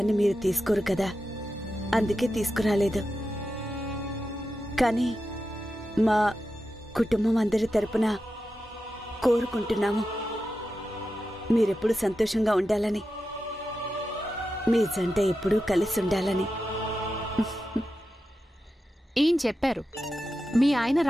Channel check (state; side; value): normal; both; correlation 0.90